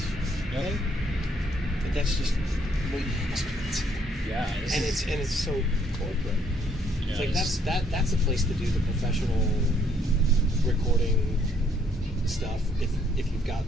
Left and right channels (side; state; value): both; normal; correlation 0.68